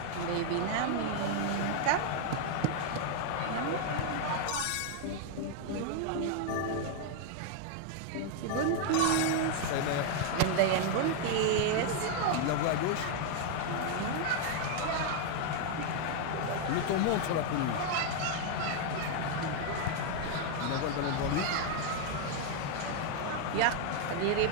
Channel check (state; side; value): different; both; correlation 0.00